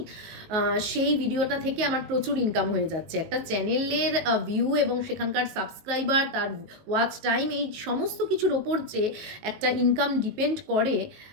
সেই ভিডিওটা থেকে আমার প্রচুর ইনকাম হয়ে যাচ্ছে। একটা চ্যানেলের ভিউ এবং সেখানকার সাবস্ক্রাইবার, তার ওয়াচ টাইম, এই সমস্ত কিছুর ওপর যে একটা ইনকাম ডিপেন্ড করে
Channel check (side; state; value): left; late; 19 ms